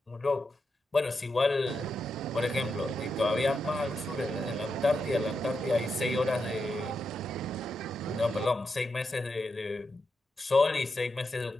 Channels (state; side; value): normal; both; correlation 0.86